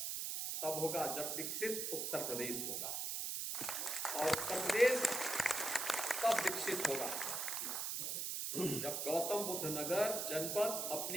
तब होगा जब विकसित उत्तर प्रदेश होगा, और उत्तर प्रदेश तब विकसित होगा जब गौतम बुद्ध नगर जनपद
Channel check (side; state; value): right; noise; hiss, 1 dB below the sound